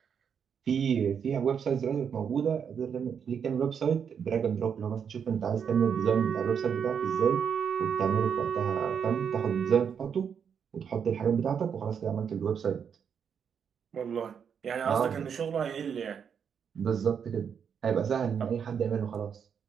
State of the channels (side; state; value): left; quieter; 7.3 dB